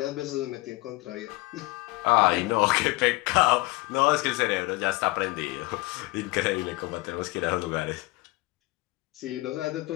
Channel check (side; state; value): right; quieter; 21.7 dB